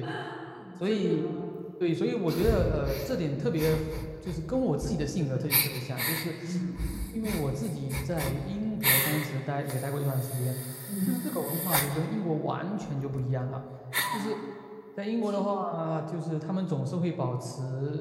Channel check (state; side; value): identical; both; correlation 1.00